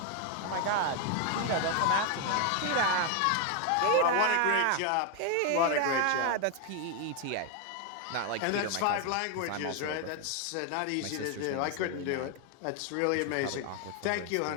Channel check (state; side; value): different; both; correlation 0.01